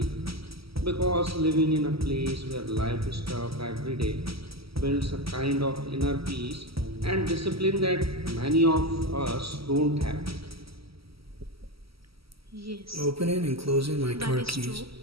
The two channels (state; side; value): late; left; 0.75 ms